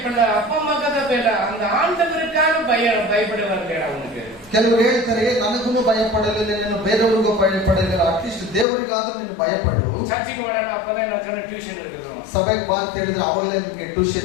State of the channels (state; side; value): drops out; right; at 8.7 s